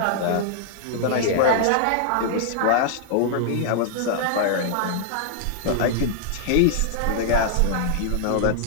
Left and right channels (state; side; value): different; both; correlation -0.01